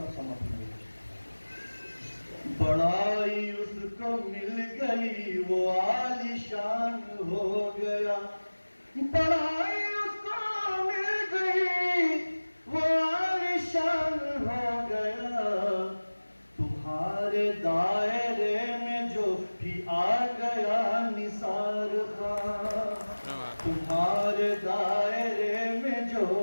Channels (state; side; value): inverted; both; correlation -1.00